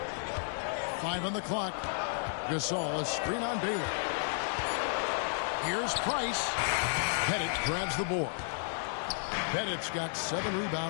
5 on the clock. Gasol, a screen on Baylor. Here's Price. Pettit grabs the board. Pettit's got 7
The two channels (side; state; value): right; silent; digital silence